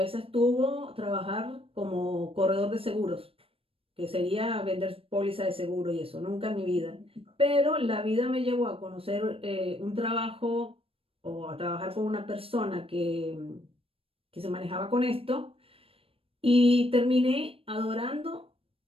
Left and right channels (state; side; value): late; left; 0.27 ms